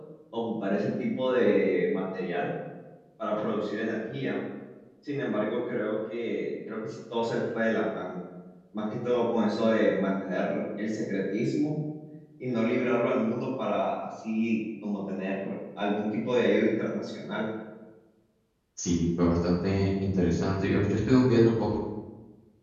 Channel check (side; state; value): both; identical; correlation 1.00